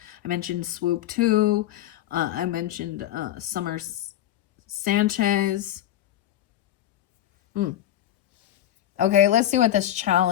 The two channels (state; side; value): quieter; right; 12.7 dB